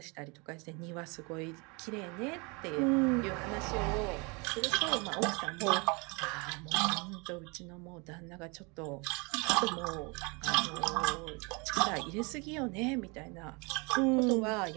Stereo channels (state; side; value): quieter; left; 29.7 dB